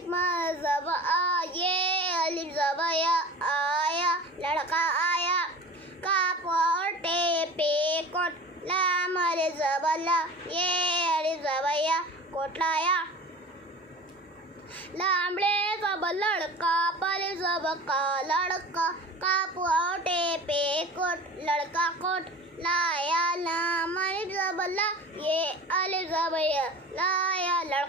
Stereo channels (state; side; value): normal; both; correlation 0.38